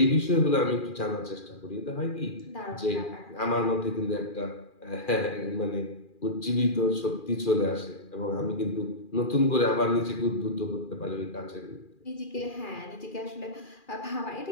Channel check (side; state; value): right; late; 2.4 ms